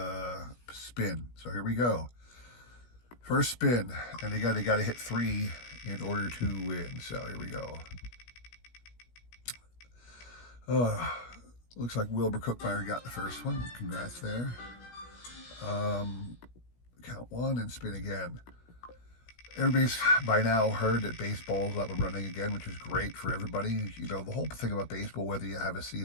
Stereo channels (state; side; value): late; right; 17 ms